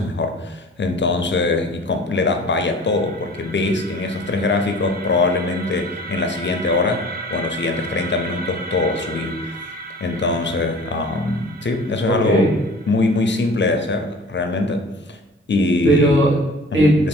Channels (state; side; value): normal; both; correlation 0.44